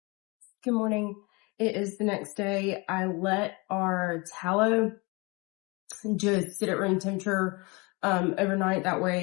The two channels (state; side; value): quieter; right; 27.3 dB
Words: Good morning. It is the next day. I let our tallow just sit at room temperature overnight. That